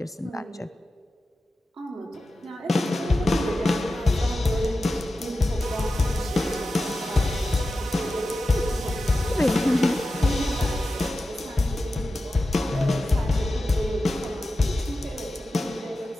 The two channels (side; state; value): both; normal; correlation 0.92